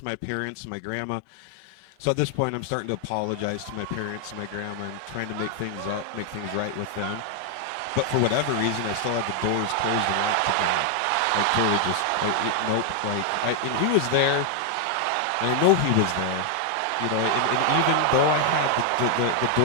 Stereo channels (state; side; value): different; both; correlation 0.00